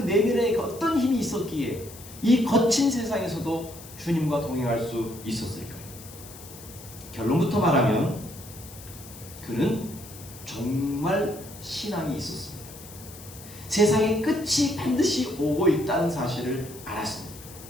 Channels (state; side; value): noise; left; hiss, 17 dB below the sound